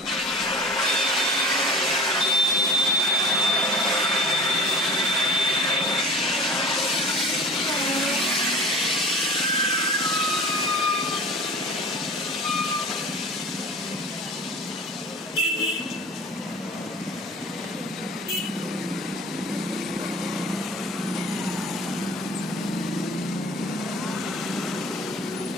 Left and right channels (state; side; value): normal; both; correlation 0.40